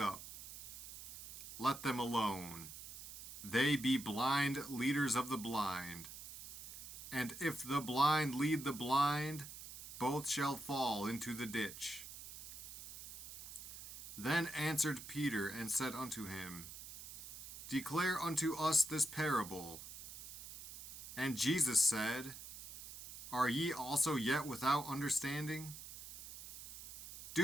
Let them alone. They be blind leaders of the blind. And if the blind lead the blind, both shall fall into the ditch. Then answered Peter and said unto him, Declare unto us this parable. And Jesus said, Are ye also yet without understanding?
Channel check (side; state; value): right; noise; hiss, 11 dB below the sound